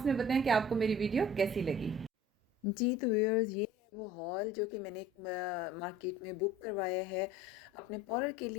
में बताएं कि आपको मेरी वीडियो कैसी लगी। जी तो व्यूअर्स, ये है वो हॉल जो कि मैंने एक मार्केट में बुक करवाया है, अपने पार्लर के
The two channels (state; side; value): normal; both; correlation 0.47